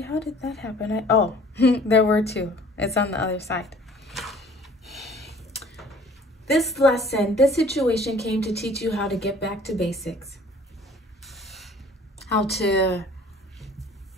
how did that happen? There were 2. It's on the other side. This lesson, this situation came to teach you how to get back to basics. How to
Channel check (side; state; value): both; normal; correlation 0.52